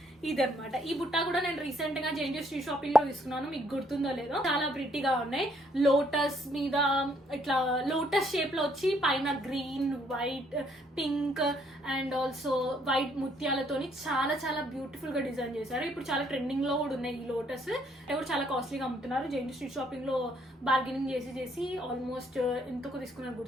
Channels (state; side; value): normal; both; correlation 0.68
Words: ఇదనమాట. ఈ బుట్ట కూడా నేను రీసెంట్ గా జేఎన్టీ స్ట్రీట్ షాపింగ్ లో తీసుకున్నాను, మీకు గుర్తుందో లేదో. చాలా ప్రిట్టిగా ఉన్నాయి. లోటస్ మీద ఇట్లా లోటస్ షేప్ లో వచ్చి పైన green, white, pink and also white ముత్యాలతోని చాలా చాలా బ్యూటిఫుల్ గా డిజైన్ చేశారు. ఇప్పుడు చాలా ట్రెండింగ్ లో కూడా ఉన్నాయి ఈ లోటస్. కూడా చాలా కాస్ట్లీగా అమ్ముతున్నారు. జేఎన్టీ స్ట్రీట్ షాపింగ్ లో బార్గెనింగ్ చేసి ఆల్మోస్ట్ ఎంతకు తీసుకున్నారు